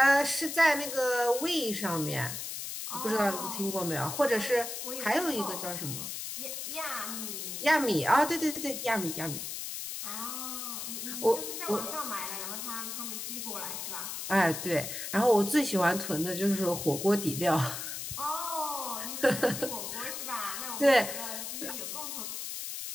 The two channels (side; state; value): left; noise; hiss, 6 dB below the sound